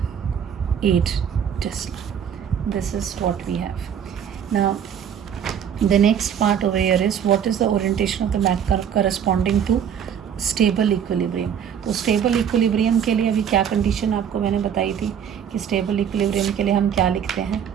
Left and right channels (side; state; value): left; quieter; 8.4 dB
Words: Tesla. This is what we have. Now the next part over here is what is the orientation of the magnet corresponding to stable equilibrium. तो stable equilibrium के लिए अभी क्या condition आपको मैंने बताई थी कि स्टेबल इक्विलिब्रियम के लिए हम क्या लिखते हैं।